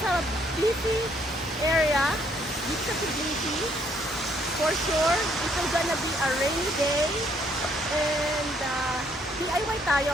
a Tbilisi area, dito sa Tbilisi. For sure, it's gonna be a rainy day. And DIY tayo.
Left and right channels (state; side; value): normal; both; correlation 0.68